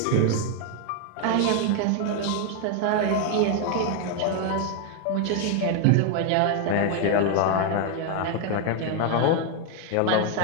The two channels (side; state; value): both; different; correlation 0.01